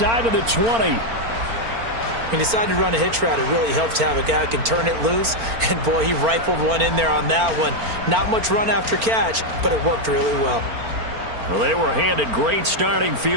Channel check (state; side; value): late; left; 4.4 ms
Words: of the 20. He decided to run a hitch route. It really helps to have a guy who can turn it loose. And, boy, he rifled one in there on that one. Not much run after catch, but it worked really well. Well, they were handed great starting